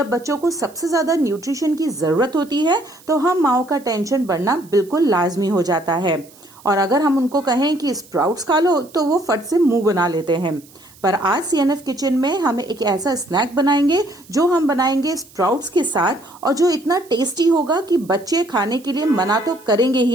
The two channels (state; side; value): noise; right; hiss, 25 dB below the sound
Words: बच्चों को सबसे ज्यादा न्यूट्रिशन की जरूरत होती है, तो हम माओ का टेंशन बढ़ना बिल्कुल लाजमी हो जाता है। और अगर हम उनको कहें कि स्प्राउट्स खा लो, तो वो फट से मुंह बना लेते हैं। पर आज सीएनएफ किचन में हम एक ऐसा स्नैक बनाएंगे जो हम बनाएंगे स्प्राउट्स के साथ, और जो इतना टेस्टी होगा कि बच्चे खाने के लिए मना तो करेंगे